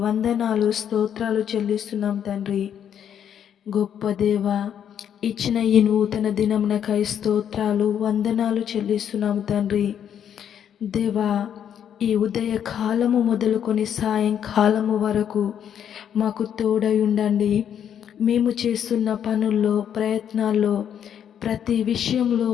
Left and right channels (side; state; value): right; quieter; 9.1 dB